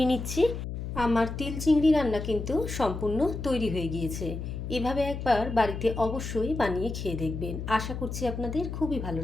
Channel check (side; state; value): left; noise; hum, 6 dB below the sound